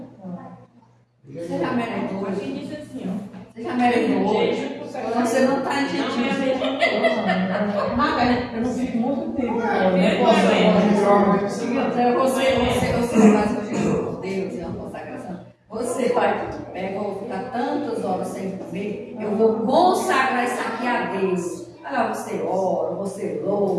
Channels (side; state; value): both; identical; correlation 1.00